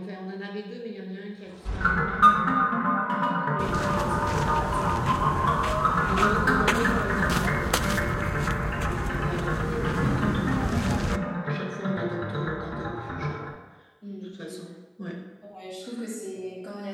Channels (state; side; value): identical; both; correlation 1.00